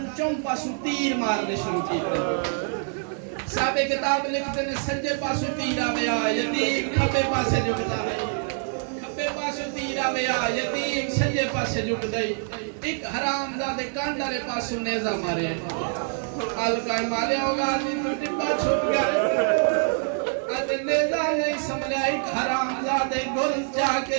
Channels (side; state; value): left; silent; 55 dB below the other